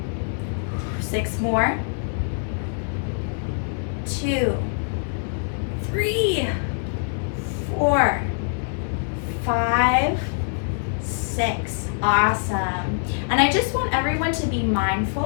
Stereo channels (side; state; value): right; silent; digital silence